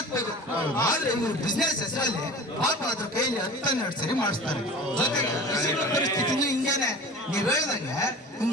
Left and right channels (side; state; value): both; normal; correlation 0.38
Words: ಆದ್ರೆ ಇವರು ಬಿಸ್ನೆಸ್ ಹೆಸರಲ್ಲಿ ಪಾಪ ಅದ್ರ ಕೈಲಿ 10-12 ಸರಿ ಮಾಡಿಸ್ತಾರೆ. ಜೊತೆಗೆ ಪರಿಸ್ಥಿತಿನೂ ಹಿಂಗೇನೆ. ನೀವ್ ಹೇಳ್ದಂಗೆ